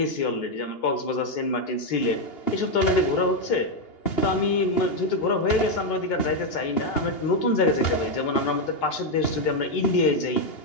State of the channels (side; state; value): right; late; 2.8 ms